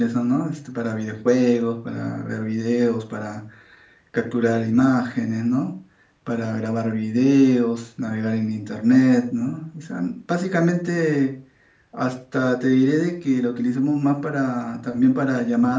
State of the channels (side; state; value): both; identical; correlation 1.00